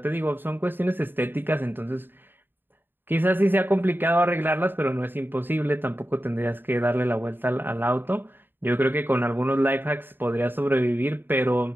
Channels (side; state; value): left; late; 0.095 ms